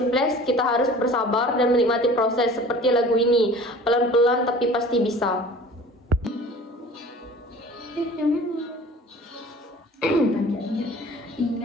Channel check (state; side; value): normal; both; correlation 0.44